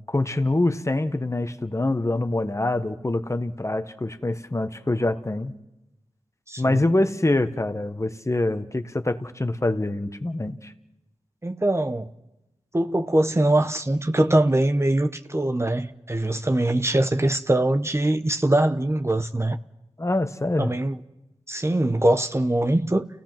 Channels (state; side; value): normal; both; correlation 0.91